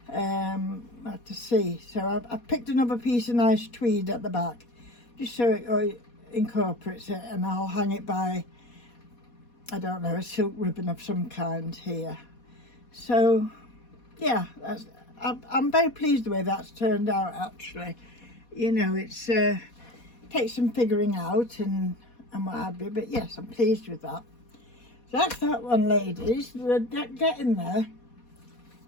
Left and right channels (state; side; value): late; right; 4.2 ms